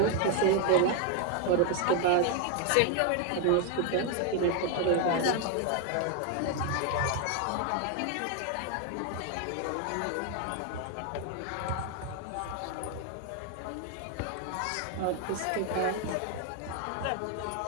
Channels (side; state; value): both; different; correlation 0.00